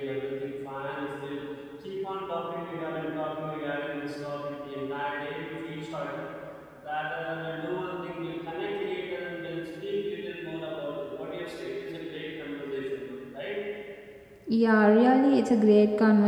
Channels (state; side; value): identical; both; correlation 1.00